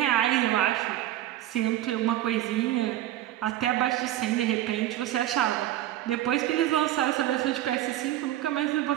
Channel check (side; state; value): left; quieter; 13.6 dB